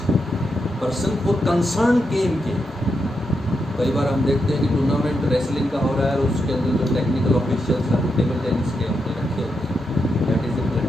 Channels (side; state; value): both; normal; correlation 0.84